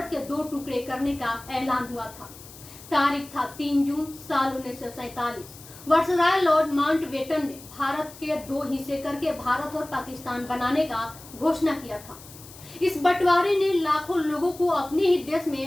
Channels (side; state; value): left; noise; hiss, 18 dB below the sound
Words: के दो टुकड़े करने का ऐलान हुआ था। तारीख था 3 जून साल 1947। वायसराय लॉर्ड माउंटबेटन ने भारत के दो हिस्से करके भारत और पाकिस्तान बनाने का घोषणा किया था। इस बंटवारे ने लाखों लोगों को अपने ही देश